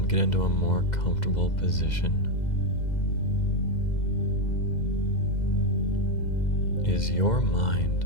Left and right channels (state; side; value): late; right; 2.0 ms